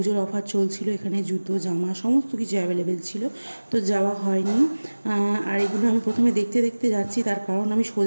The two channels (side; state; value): both; inverted; correlation -1.00